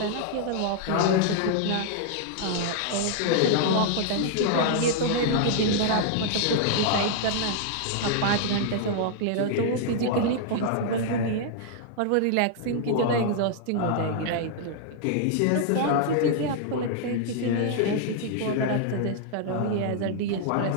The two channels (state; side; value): different; both; correlation -0.01